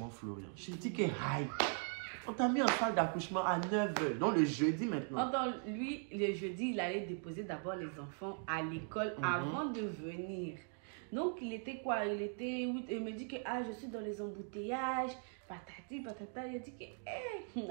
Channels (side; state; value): left; silent; 51 dB below the other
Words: Florian. Je dis que, on t'a mis en salle d'accouchement à 9h, donc le jeudi maintenant. Lui, le jeudi, il allait déposer d'abord les enfants à l'école avant de venir. Donc, il était quoi? Il me dit que, je suis dans les embouteillages, patati, patata. Il dit que,